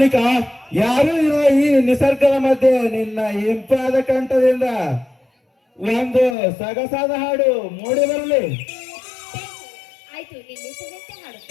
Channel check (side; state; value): right; drops out; at 6.4 s